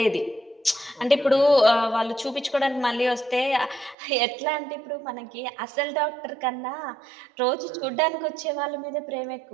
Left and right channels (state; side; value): drops out; left; at 4.0 s